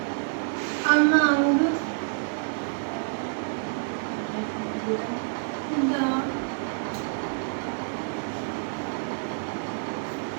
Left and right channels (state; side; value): silent; left; digital silence